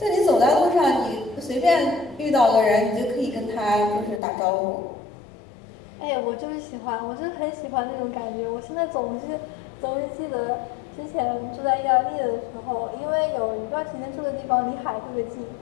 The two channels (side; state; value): right; drops out; at 4.2 s